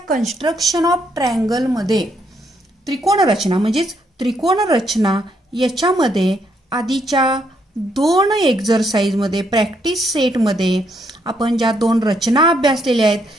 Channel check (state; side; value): normal; both; correlation 0.74